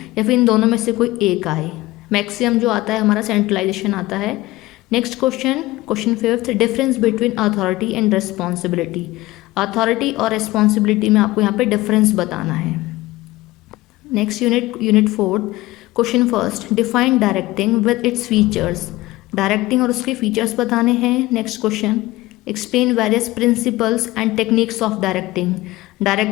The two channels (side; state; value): right; quieter; 18.6 dB